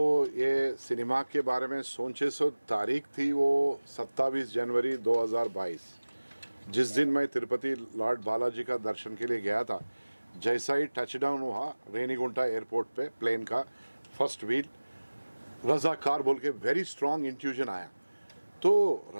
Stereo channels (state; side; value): inverted; both; correlation -1.00